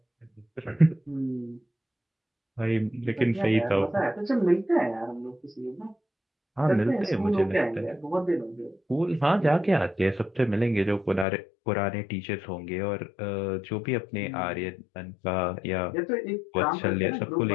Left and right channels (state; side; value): drops out; right; at 11.2 s